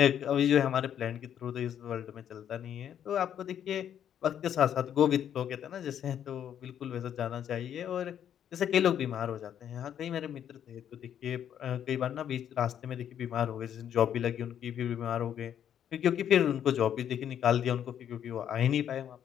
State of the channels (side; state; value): right; quieter; 9.6 dB